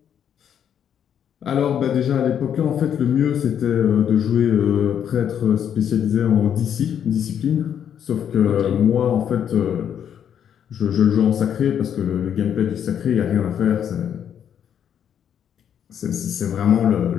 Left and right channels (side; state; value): right; quieter; 8.9 dB